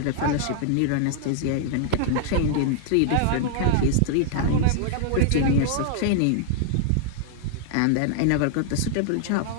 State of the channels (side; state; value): both; different; correlation -0.01